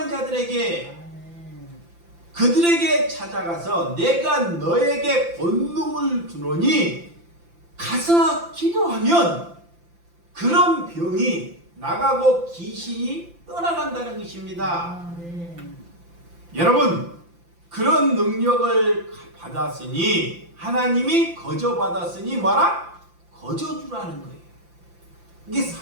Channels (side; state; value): left; late; 5.8 ms